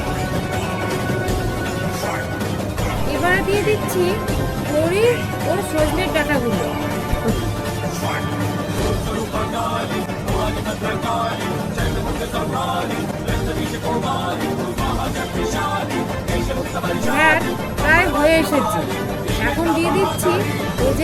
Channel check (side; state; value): both; identical; correlation 1.00